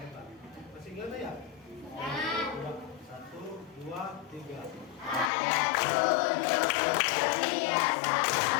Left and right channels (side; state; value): right; drops out; at 5.3 s